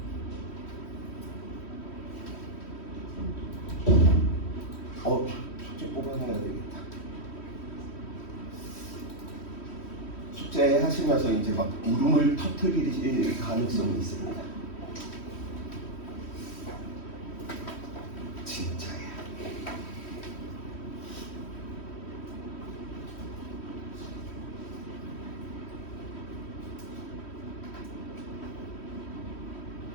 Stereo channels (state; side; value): late; right; 3.1 ms